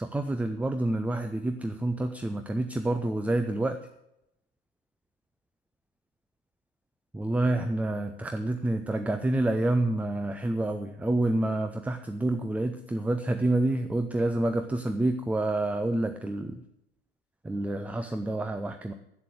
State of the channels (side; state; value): both; normal; correlation 0.92